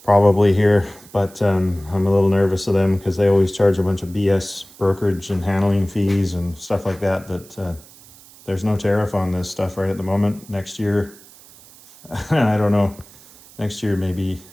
probably here, but I'm a little nervous of them because they always charge a bunch of BS brokerage and handling fees and stuff like that, there's no tariff on this stuff right at the moment. Next year, I don't know. Next year maybe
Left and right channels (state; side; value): noise; right; hiss, 23 dB below the sound